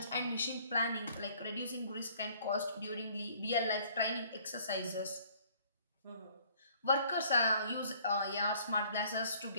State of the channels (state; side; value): inverted; both; correlation -0.58